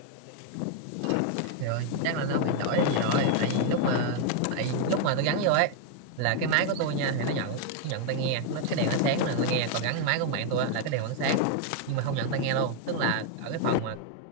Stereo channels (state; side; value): different; both; correlation 0.00